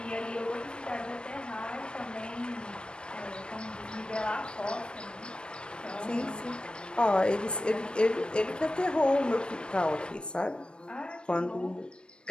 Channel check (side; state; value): right; late; 0.054 ms